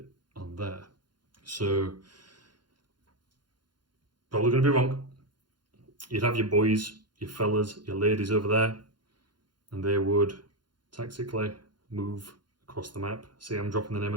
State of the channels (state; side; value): late; left; 0.71 ms